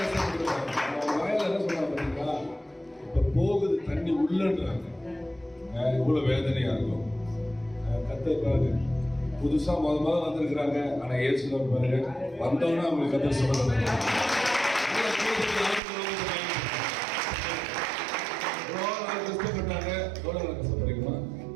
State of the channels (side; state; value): left; drops out; at 15.8 s